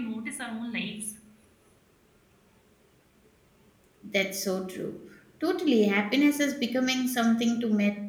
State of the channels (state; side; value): identical; both; correlation 1.00